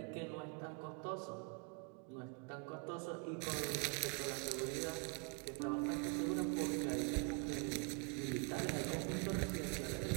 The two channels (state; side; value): quieter; left; 35.6 dB